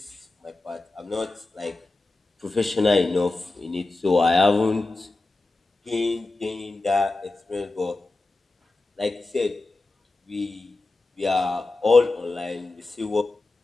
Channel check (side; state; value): right; quieter; 3.2 dB